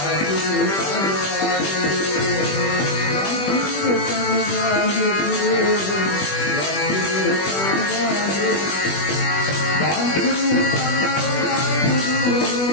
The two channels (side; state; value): right; late; 21 ms